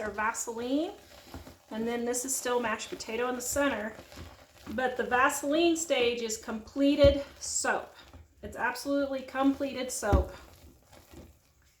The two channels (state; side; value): identical; both; correlation 1.00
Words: Vaseline. And then this is still mashed potato in the center. But the Vaseline stage is completed soap. It's absolutely completed soap.